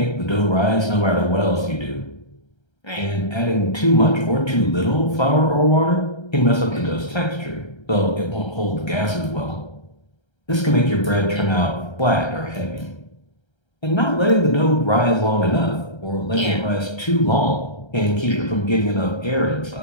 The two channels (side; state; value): right; late; 1.3 ms